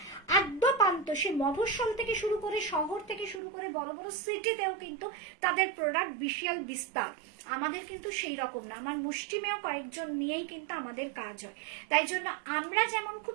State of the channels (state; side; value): drops out; left; at 3.4 s